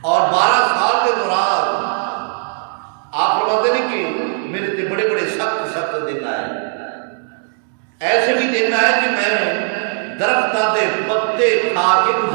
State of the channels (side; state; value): left; silent; 60 dB below the other